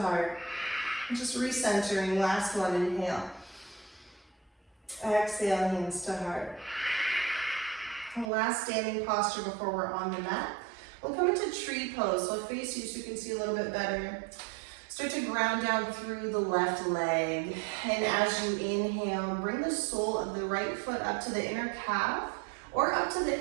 Just recentering, last one, inhale. Exhale, hands to heart. And last standing posture before we're on the mat. We'll come into tree pose. So I'll face you so you can see a little bit better. Start to ground down through the left leg. And as you inhale, bring the sole of the right foot up to the inner calf or up to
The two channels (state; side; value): drops out; left; at 8.2 s